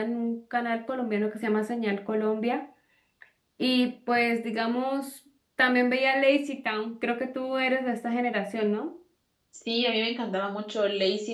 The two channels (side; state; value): both; identical; correlation 1.00